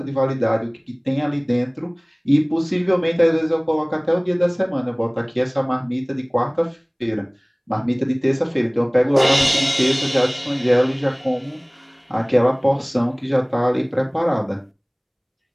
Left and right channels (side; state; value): both; identical; correlation 1.00